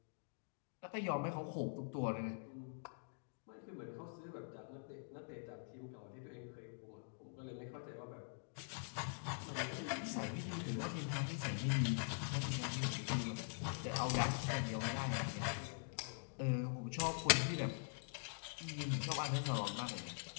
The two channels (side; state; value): right; silent; digital silence